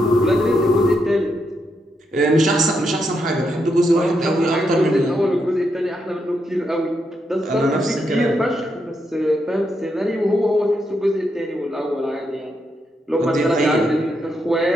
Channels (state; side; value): normal; both; correlation 0.81